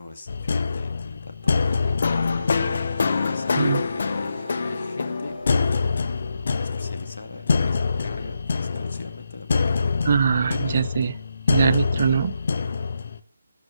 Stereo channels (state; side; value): inverted; both; correlation -0.84